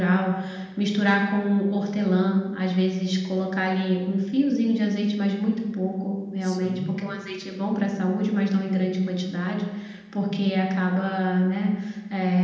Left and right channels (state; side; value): identical; both; correlation 1.00